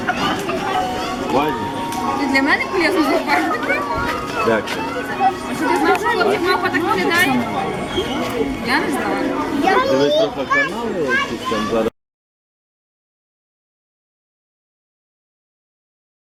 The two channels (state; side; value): identical; both; correlation 1.00